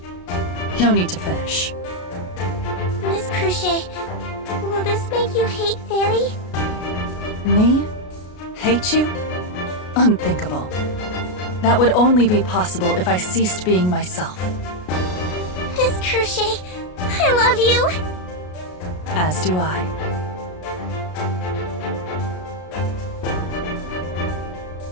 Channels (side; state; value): right; late; 33 ms